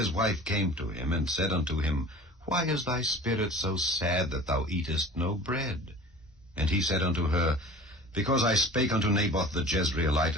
wife came to him, and said unto him, Why is thy spirit so sad that thou eatest no bread? And he said unto her, Because I spake unto Naboth the Jezreelite,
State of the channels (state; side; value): normal; both; correlation 0.41